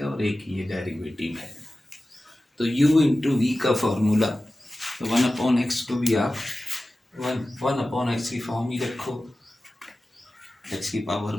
और एक ये डेरिवेटिव है. तो u इंटू वी का फॉर्मूला, तो 1 अपॉन एक्स को भी आप 1 अपॉन एक्स की फॉर्म ही रखो, एक्स की पावर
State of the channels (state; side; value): normal; both; correlation 0.95